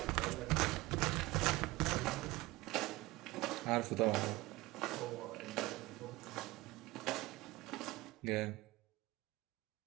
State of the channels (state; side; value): quieter; left; 20.1 dB